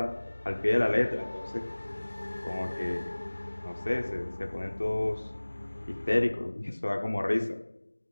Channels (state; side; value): inverted; both; correlation -1.00